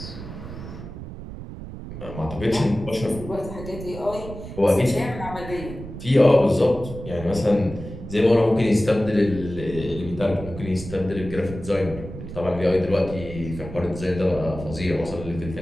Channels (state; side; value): noise; right; rumble, 11 dB below the sound